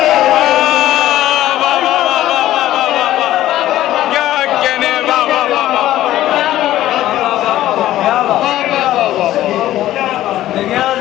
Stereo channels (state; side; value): quieter; right; 14.1 dB